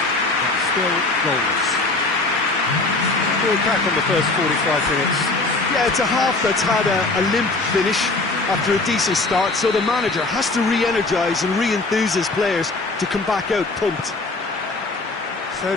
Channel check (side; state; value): right; quieter; 3.3 dB